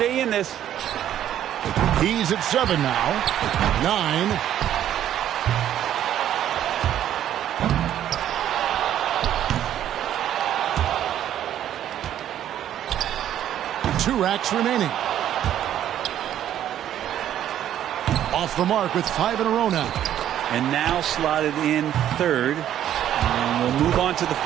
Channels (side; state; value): left; quieter; 11.1 dB